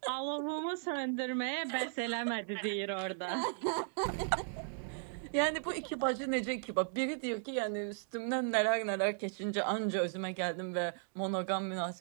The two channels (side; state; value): left; silent; digital silence